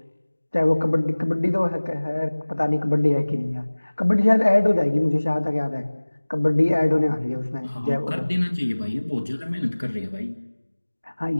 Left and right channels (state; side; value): inverted; both; correlation -1.00